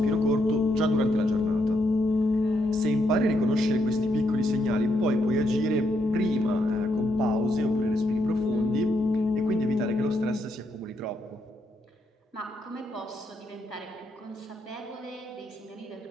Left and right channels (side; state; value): both; normal; correlation 0.78